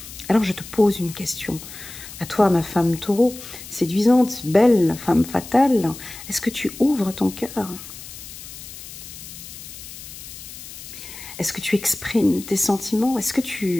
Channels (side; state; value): left; noise; hiss, 14 dB below the sound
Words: Alors je te pose une question. À toi, ma femme taureau, séduisante, belle, femme fatale, est-ce que tu ouvres ton cœur? Est-ce que tu exprimes tes sentiments? Est-ce que